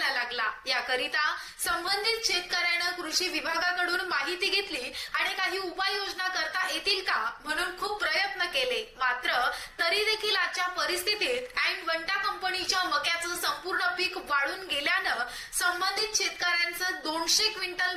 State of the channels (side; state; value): both; identical; correlation 1.00